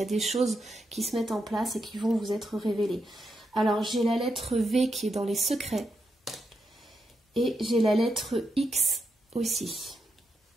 y a des choses qui se mettent en place et qui vont vous être révélées. Alors, j'ai la lettre V qui est dans les secrets et j'ai la lettre X aussi.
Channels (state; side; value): normal; both; correlation 0.83